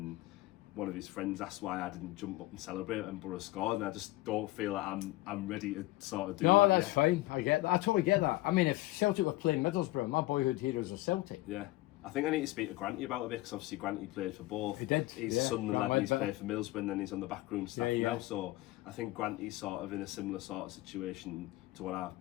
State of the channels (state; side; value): quieter; right; 18.7 dB